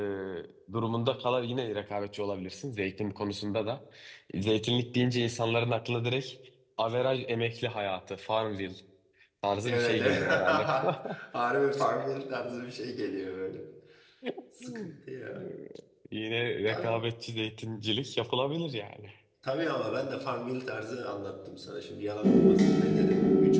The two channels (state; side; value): identical; both; correlation 1.00